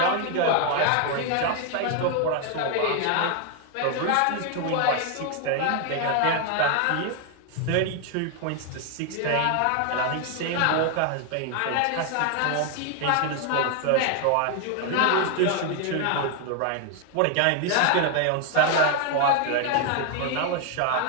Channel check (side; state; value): both; different; correlation 0.00